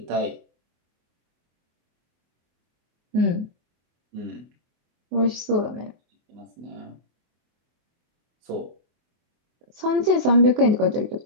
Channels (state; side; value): late; left; 24 ms